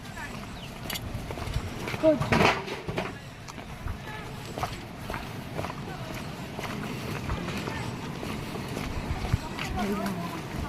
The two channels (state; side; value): identical; both; correlation 1.00